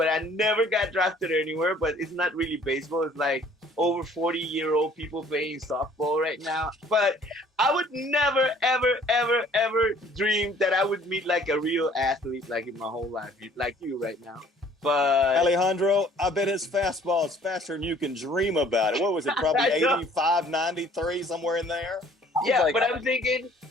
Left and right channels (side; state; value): both; normal; correlation 0.56